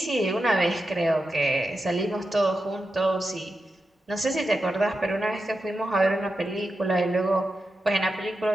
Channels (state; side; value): normal; both; correlation 0.89